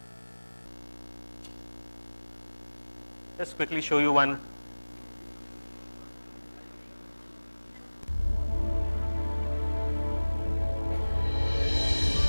Just quickly show you one.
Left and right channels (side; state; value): both; inverted; correlation -1.00